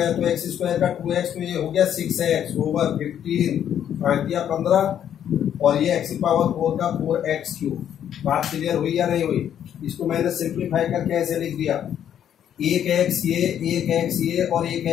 तो एक्स स्क्वायर का 2x, तो ये हो गया 6x ओवर 15 15 और ये एक्स की पावर 4 का 4x क्यूब। बात क्लियर हुई या नहीं हुई? इसको मैंने सिंप्लीफाई करके ऐसे लिख दिया, एक एक्स ये और एक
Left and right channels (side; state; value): right; quieter; 9.8 dB